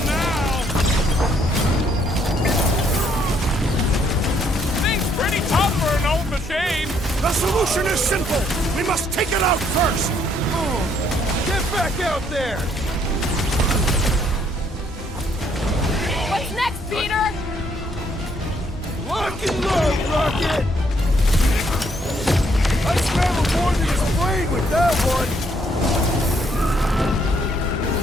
now! Thing's pretty tough for an old machine! The solution is simple! We must take it out first! Get back out there! What's next, Peter? Lock and load, Rocket! I scrambled more than his brain with that one!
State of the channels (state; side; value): normal; both; correlation 0.69